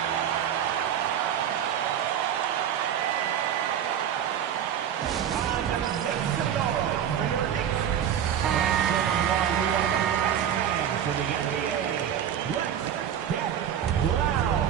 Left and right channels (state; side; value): quieter; left; 9.5 dB